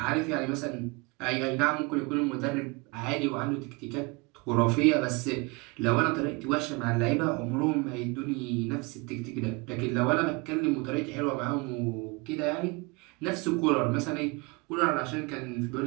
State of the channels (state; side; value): quieter; left; 27.5 dB